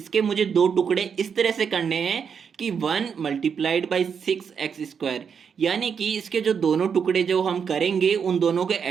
मुझे दो टुकड़े इस तरह से करने हैं कि 1 मल्टीप्लाइड बाई 6x², यानी कि इसके जो दोनों टुकड़े जो हम करेंगे उन दोनों के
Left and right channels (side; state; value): left; quieter; 6.8 dB